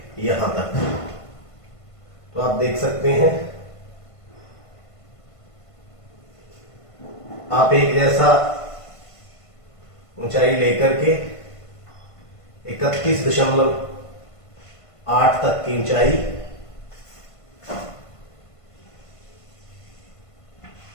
यहां तक। तो आप देख सकते हैं, आप एक जैसा ऊंचाई लेकर के 31.8 तक की ऊंचाई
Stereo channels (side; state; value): right; late; 1.5 ms